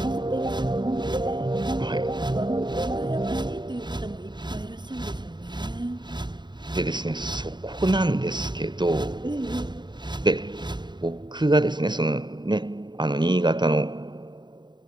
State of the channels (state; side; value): late; left; 0.22 ms